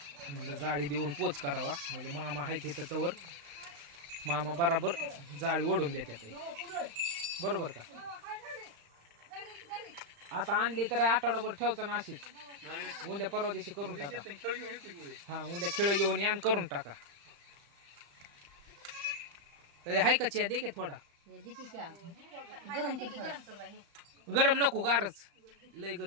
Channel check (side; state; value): left; late; 35 ms